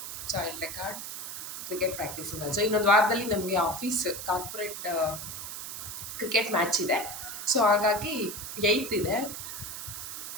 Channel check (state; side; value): noise; right; hiss, 7 dB below the sound